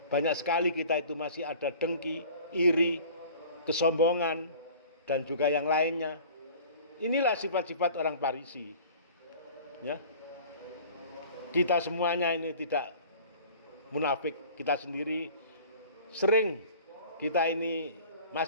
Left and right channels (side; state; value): both; inverted; correlation -0.45